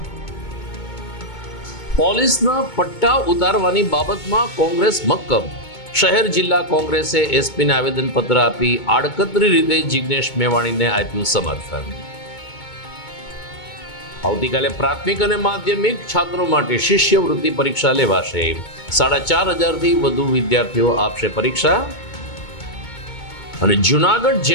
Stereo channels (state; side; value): late; right; 2.2 ms